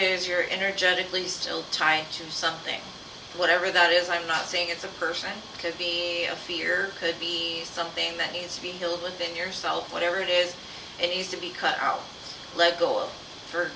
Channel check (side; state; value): both; identical; correlation 1.00